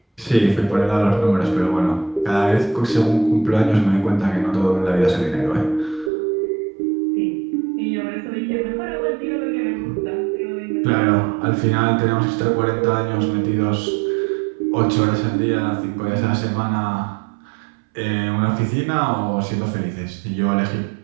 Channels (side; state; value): left; drops out; at 6.1 s